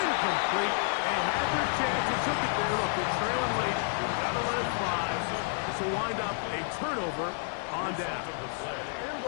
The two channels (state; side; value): silent; right; 58 dB below the other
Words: They had their chance. They took it there. Look, it's trailing late. Got to let it fly. This will wind up a turnover on down.